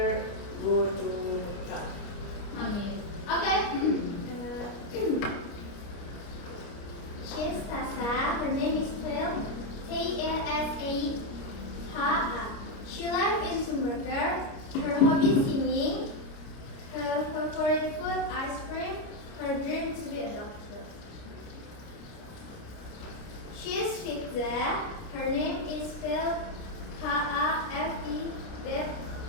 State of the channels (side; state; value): right; late; 29 ms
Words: go to Mekah. Amin. Okay. She's Tasa. Her name is spelled T-A-S-A-H-A. She lives in Sumberger. Her hobby is singing. Her favorite food ice cream. Her dream to be a doctor. She is Fitza. Her name is spelled Hafidza.